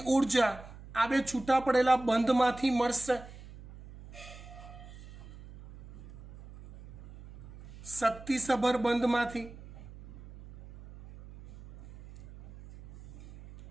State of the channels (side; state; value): right; noise; hum, 17 dB below the sound